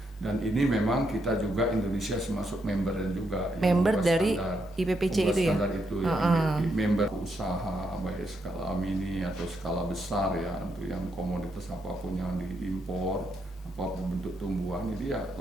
Dan ini memang kita juga Indonesia termasuk member dan juga member dari IPPC itu ya? Standar itu yang member usaha baik skala mini atau skala besar ya, untuk yang komoditas apapun yang diimpor, apapun bentuk tumbuhan, ini ya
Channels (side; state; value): both; normal; correlation 0.79